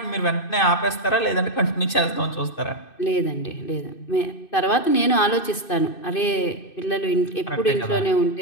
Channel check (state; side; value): late; right; 2.6 ms